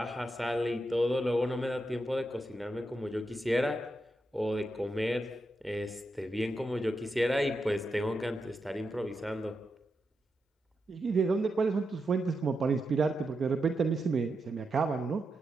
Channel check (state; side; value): normal; both; correlation 0.86